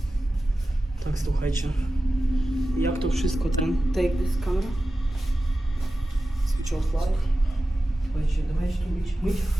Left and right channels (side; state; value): both; normal; correlation 0.94